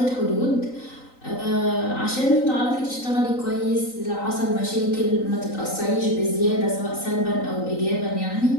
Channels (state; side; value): late; right; 3.9 ms